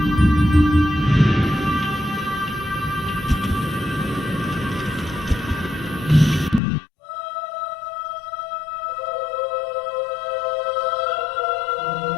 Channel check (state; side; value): drops out; right; at 6.6 s